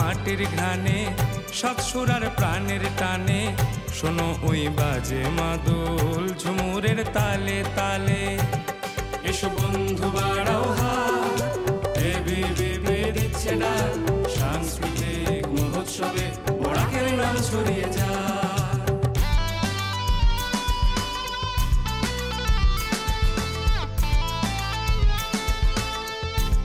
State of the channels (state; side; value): identical; both; correlation 1.00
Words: ঘানে সাত সুরার প্রাণের টানে, শোনো ওই বাজে মাদল ঝুমুরের তালে তালে। এসো বন্ধু বাড়াও হাত, এবিভিপি দিচ্ছে ডাক, সাংস্কৃতিক মহোৎসবে বরাকের নাম ছড়িয়ে যায়।